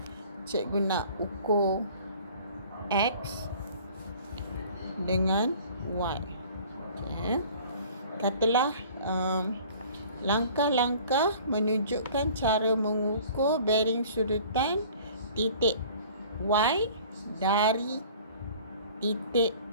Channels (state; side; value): inverted; both; correlation -0.49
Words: cikgu nak ukur X dengan Y. Okey. Katalah langkah-langkah menunjukkan cara mengukur bearing sudutan titik Y dari titik